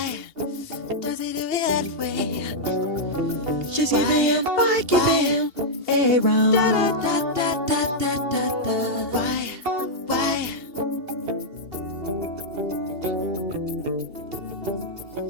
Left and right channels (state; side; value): late; left; 2.8 ms